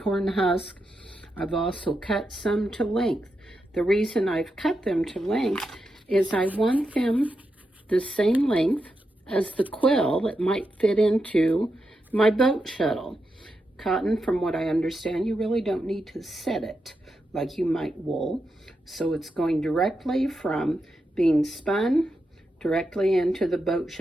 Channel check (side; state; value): both; normal; correlation 0.86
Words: husk. I've also cut some to length. The reason I've cut them to length is I want them the same length as the quill that might fit into my boat shuttle. Cotton, from what I understand, you really don't need to set it like you might wool. So it's going directly from being spun directly into the boat